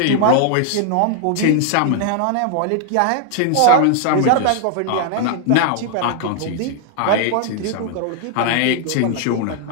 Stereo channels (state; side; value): different; both; correlation 0.00